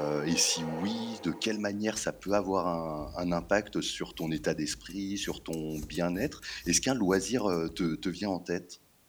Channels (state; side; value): identical; both; correlation 1.00